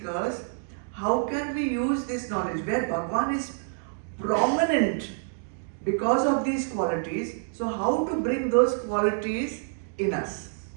how can we use this knowledge where Bhagwan is prominent because of these qualities. So how to bring those qualities in us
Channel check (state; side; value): silent; left; digital silence